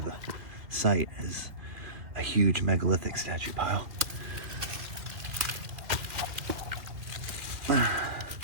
the site is a huge megalithic statue pile. Oh,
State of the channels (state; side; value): late; left; 2.4 ms